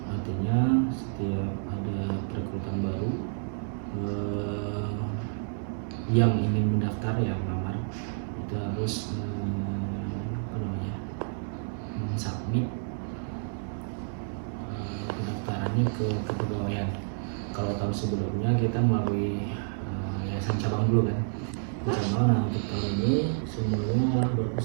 Artinya setiap ada perekrutan baru yang ingin mendaftar yang melamar itu harus submit pendaftarannya ke kepegawaian. Kalau tahun sebelumnya kita melalui yayasan cabang dulu kan, cabang. Nah, untuk tahun ini semuanya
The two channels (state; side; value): silent; left; 58 dB below the other